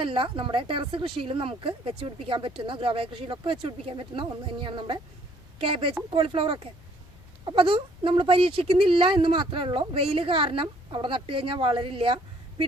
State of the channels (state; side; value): normal; both; correlation 0.62